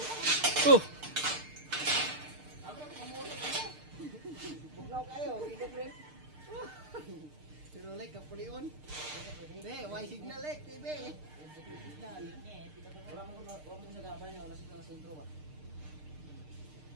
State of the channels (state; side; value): late; left; 6.6 ms